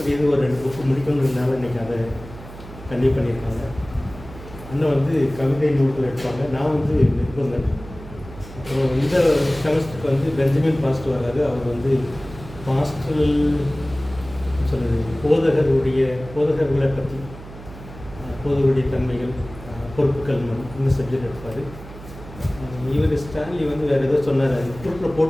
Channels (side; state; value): right; noise; hum, 15 dB below the sound